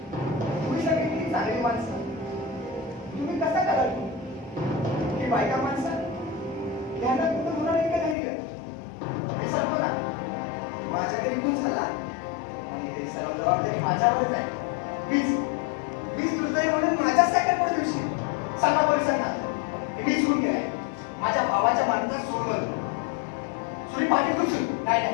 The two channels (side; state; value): right; drops out; at 8.2 s